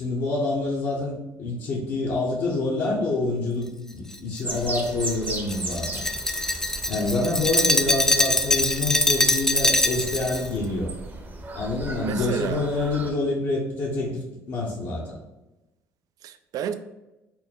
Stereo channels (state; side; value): normal; both; correlation 0.42